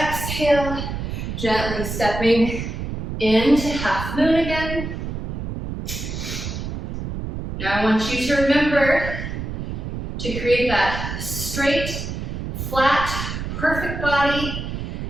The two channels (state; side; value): noise; right; rumble, 5 dB below the sound